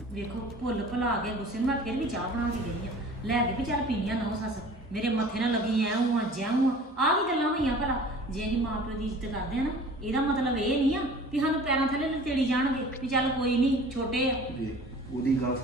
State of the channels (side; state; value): both; normal; correlation 0.45